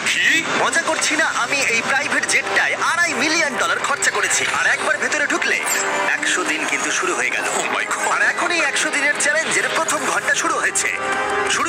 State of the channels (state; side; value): identical; both; correlation 1.00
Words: কি? মজা করছি না, আমি এই প্রাইভেট জেটটায় $2.5 মিলিয়ন খরচা করেছি। আর একবার ভেতরে ঢুকলে 100 দিন কিন্তু শুরু হয়ে গেল। ও মাই গড। আর এখন এই 100 দিনের চ্যালেঞ্জের প্রথম ঘন্টা শুরু হয়েছে। শুরু